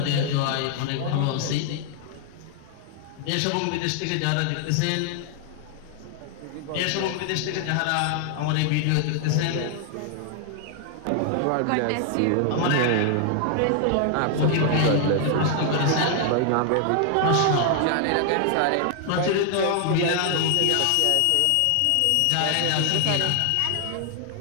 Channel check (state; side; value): different; both; correlation 0.00